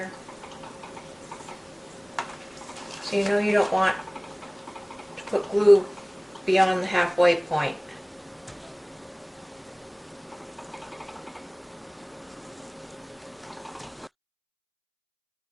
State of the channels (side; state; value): both; identical; correlation 1.00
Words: So you know you don't want to put glue beyond the halfway point.